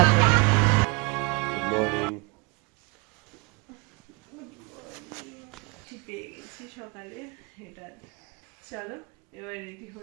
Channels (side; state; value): left; quieter; 28.3 dB